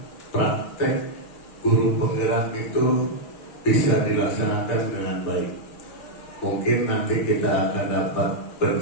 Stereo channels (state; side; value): late; right; 6.5 ms